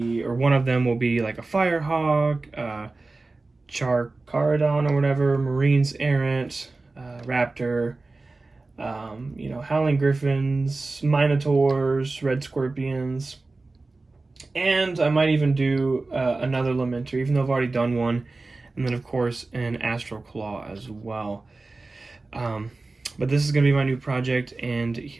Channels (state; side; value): quieter; left; 3.4 dB